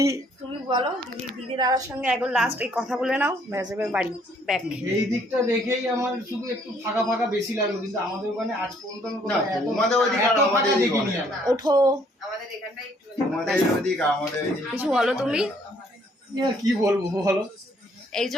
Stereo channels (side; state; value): both; normal; correlation 0.64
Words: তুমি বলো দিদি দাদার সঙ্গে একবার লাস্ট এই কথা বলে নাও ব্যাস এবার বাড়ি ব্যাক। এই দিকটা দেখেই আমার শুধু একটু ফাঁকা ফাঁকা বেশি লাগলো, কিন্তু আমাদের ওখানে আজ পর্যন্ত তোমাদের ওইদিকে আর আমাদের দেখিনি। ওঠো আমাদের এখানটাই একটু তোমাদের ওইদিকে আমাদের কিছু বলো তুমি। কি বলবো বলো, এই যে